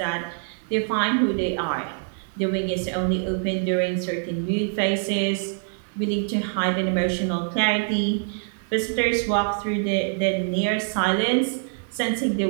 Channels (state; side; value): silent; left; digital silence